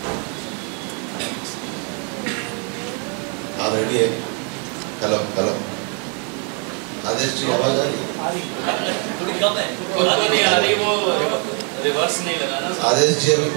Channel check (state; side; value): quieter; left; 37.9 dB